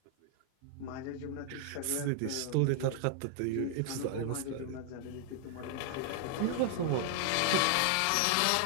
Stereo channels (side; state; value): both; different; correlation 0.00